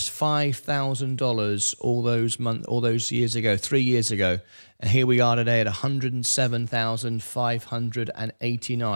$5,000 all those years ago, 3 years ago. And here we are today at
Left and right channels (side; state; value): both; inverted; correlation -1.00